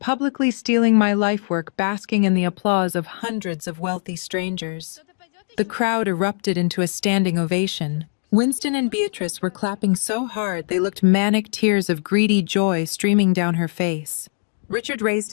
stealing my life work, basking in the applause of hundreds of wealthy strangers. The crowd erupted into a standing ovation. Winston and Beatrice were clapping so hard they looked manic, tears of greedy joy streaming down her face. Richard raised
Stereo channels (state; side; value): silent; right; digital silence